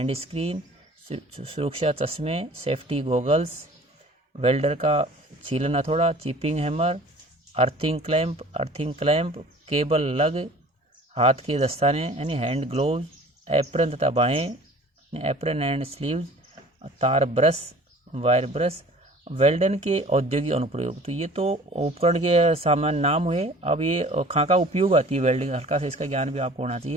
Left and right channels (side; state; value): both; normal; correlation 0.47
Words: स्क्रीन, सुरक्षा चश्मे, सेफ्टी गॉगल्स, वेल्डर का छीलन हथौड़ा, chipping hammer, earthing clamp, cable लग, हाथ के दस्ताने यानी हैंड ग्लोव्स, एप्रन तथा बाहें, एप्रन एंड स्लीव्स, तार ब्रश, वायर ब्रश। वेल्डन के औद्योगिक अनुप्रयोग, तो ये तो उपकरण के सामान्य नाम हुए। अब ये खाका उपयोग आती है वेल्डिंग, हल्का सा इसका ज्ञान भी आपको होना